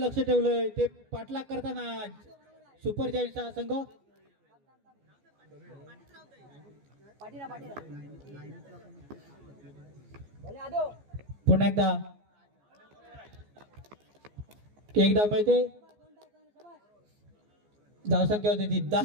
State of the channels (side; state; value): left; late; 14 ms